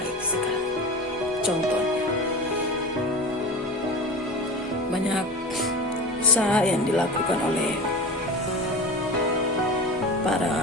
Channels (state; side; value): normal; both; correlation 0.30